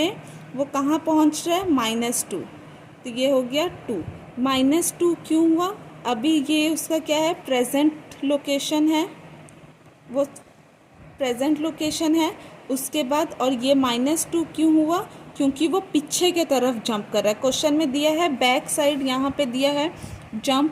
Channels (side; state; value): both; identical; correlation 1.00